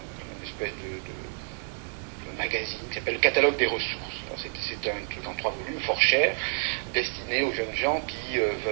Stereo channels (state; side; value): silent; left; 58 dB below the other